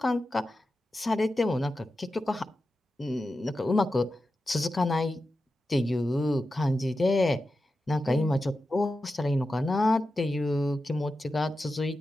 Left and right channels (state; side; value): normal; both; correlation 0.91